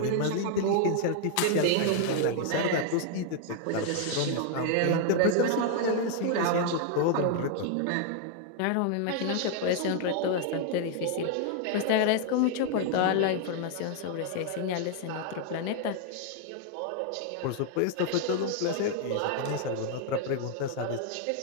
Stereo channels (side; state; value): both; different; correlation 0.00